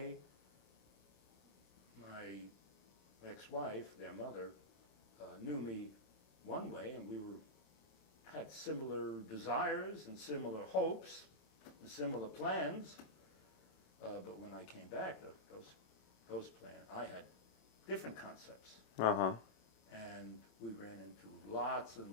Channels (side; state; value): right; late; 27 ms